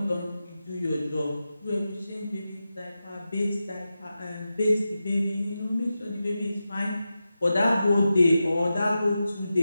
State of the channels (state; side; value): inverted; both; correlation -0.91